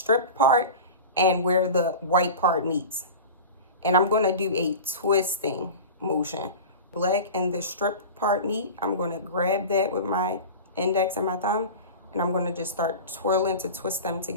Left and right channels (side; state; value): both; inverted; correlation -0.32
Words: part and where the white part meets. And I'm going to do a twisting motion. Black and the stripped part meet. I'm going to grab that with my index and my thumb. And I'm going to just start twirling to twist them